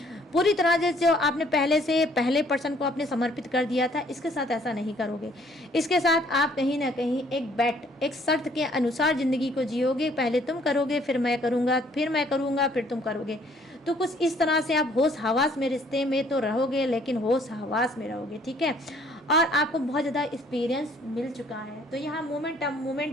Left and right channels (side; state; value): both; normal; correlation 0.61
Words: पूरी तरह से। जो आपने पहले पर्सन को आपने समर्पित कर दिया था, इसके साथ ऐसा नहीं करोगे। इसके साथ आप कहीं ना कहीं एक शर्त के अनुसार ज़िंदगी को जियोगे। पहले तुम करोगे, फिर मैं करूँगा, फिर मैं करूँगा, फिर तुम करोगे। तो कुछ इस तरह से आप होश हवास में रिश्ते में तो रहोगे, लेकिन होश हवास में रहोगे। ठीक है, और आपको बहुत ज़्यादा एक्सपीरियंस मिल चुका है। तो यहाँ